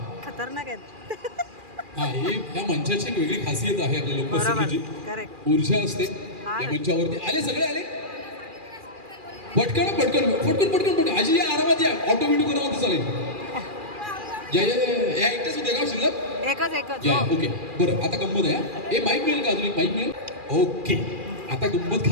खतरनाक आहे. हा, हे या मंचाची एक वेगळी खासियत आहे आपल्या लोकसंगीची. ऊर्जा असते या मंचावरती. आले, सगळे आले. पटकन पटकन पटकन पटकन पटकन. आजी या, आरामात या, ऑटो व्हिडिओ करा म्हणते चालेल. या एकटाच होते का शिल्लक? एकच. या, ओके. बरं, आता गंमत आहे. हे माईक मिळेल का? अजून एक माईक मिळेल? ओके, आता गंमत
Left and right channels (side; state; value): left; late; 2.4 ms